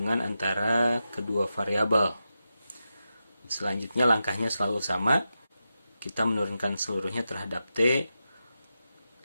antara kedua variabel. Selanjutnya langkahnya selalu sama. Kita menurunkan seluruhnya terhadap t.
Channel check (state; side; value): inverted; both; correlation -0.89